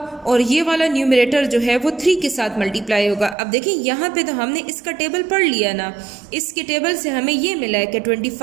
और ये वाला न्यूमरेटर जो है वो 3 के साथ मल्टीप्लाई होगा। अब देखिए यहाँ पे तो हमने इसका टेबल पढ़ लिया ना, इसके टेबल से हमें ये मिला है कि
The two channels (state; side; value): drops out; left; at 3.4 s